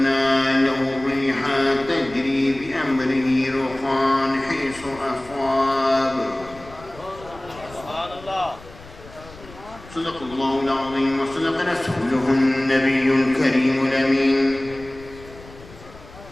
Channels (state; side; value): noise; left; rumble, 19 dB below the sound